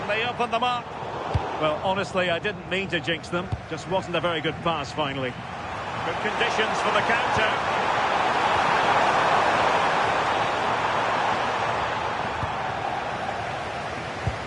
they open them up? Well, honestly, I didn't mean to jinx them. Just wasn't a very good pass, finally. Good conditions for the counter.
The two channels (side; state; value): both; identical; correlation 1.00